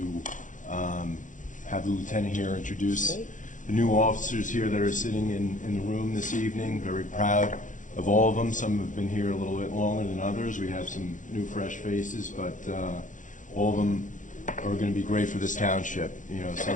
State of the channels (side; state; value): right; late; 0.37 ms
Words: have the lieutenant here introduce the new officers here that are sitting in the room this evening. Very proud of all of them. Some have been here a little bit longer than others. We have some new, fresh faces, but all of them are going to be great for this township.